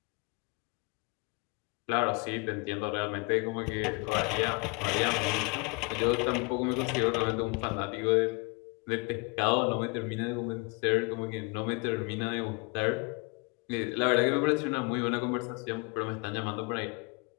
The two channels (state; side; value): quieter; right; 30.7 dB